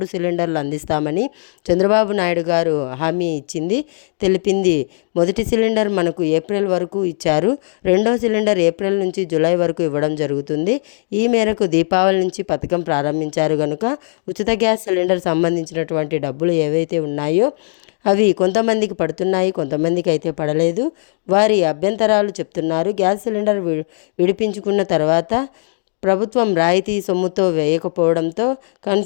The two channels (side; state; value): right; silent; digital silence